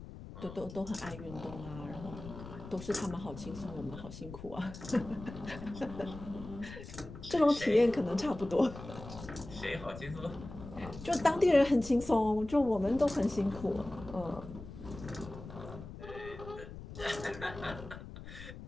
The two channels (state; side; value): noise; left; rumble, 13 dB below the sound